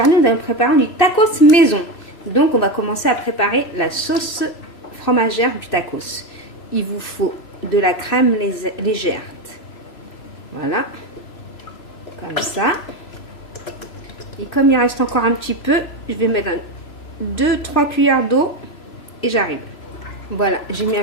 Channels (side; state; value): right; late; 3.0 ms